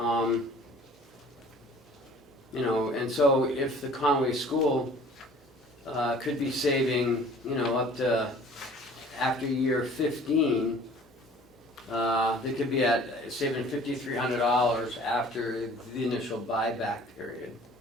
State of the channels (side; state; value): both; normal; correlation 0.50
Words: so if the Conway School could be saving, up to after year 15, they could be at saving $5,300 after the initial buyback period.